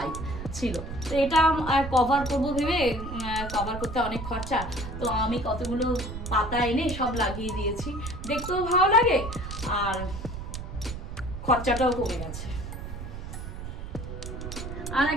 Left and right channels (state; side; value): noise; right; rumble, 8 dB below the sound